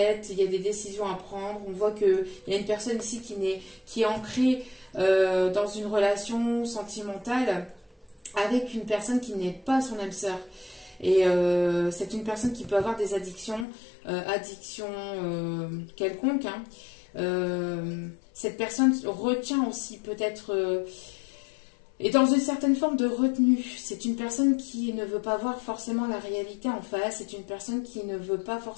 il y a des décisions à prendre. On voit qu'il y a une personne ici qui est ancrée dans une relation sentimentale avec une personne qui n'est pas son âme sœur. Et c'est une personne qui peut avoir des addictions, quelconques. Hein. Cette personne retient aussi peut-être est dans une certaine forme de retenue. C'est une personne qui ne veut pas voir forcément la réalité en face. C'est une personne qui ne veut pas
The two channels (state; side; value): drops out; right; at 13.7 s